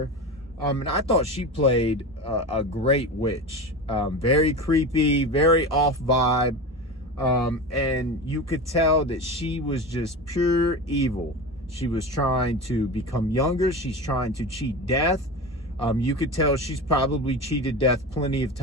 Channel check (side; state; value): both; normal; correlation 0.27